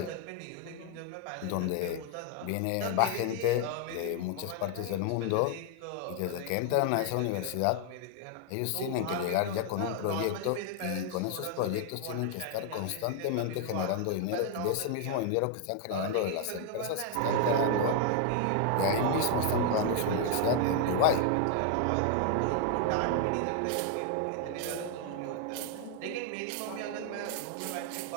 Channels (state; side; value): different; both; correlation 0.00